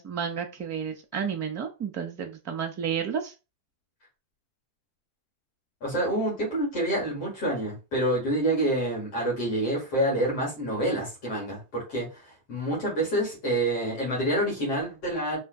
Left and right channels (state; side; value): late; right; 7.6 ms